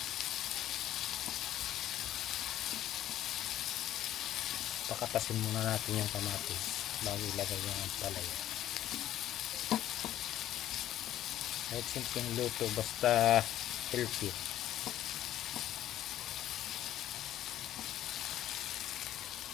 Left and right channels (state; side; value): quieter; right; 12.5 dB